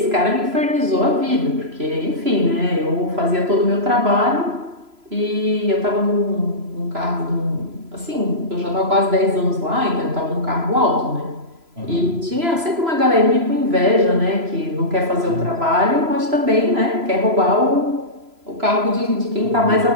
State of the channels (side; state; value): left; late; 3.0 ms